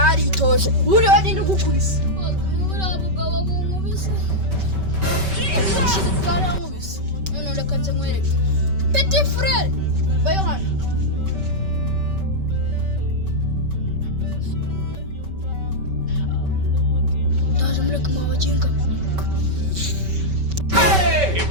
buriya bagenda ugukubise buriya bugabo bunkubise bwarankubise none reka nze nkwereke petit frere bayo hano ndaje mureke mubaginga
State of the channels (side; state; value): left; late; 5.2 ms